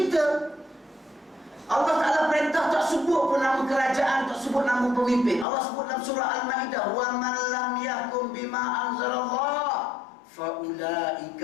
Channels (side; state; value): right; drops out; at 5.5 s